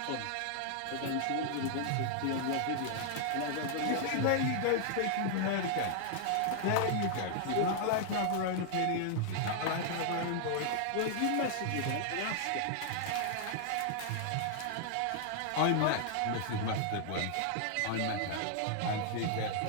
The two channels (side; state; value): both; different; correlation 0.00